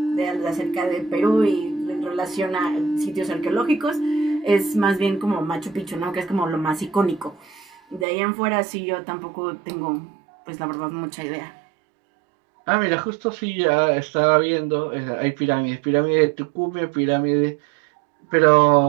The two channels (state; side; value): drops out; left; at 8.1 s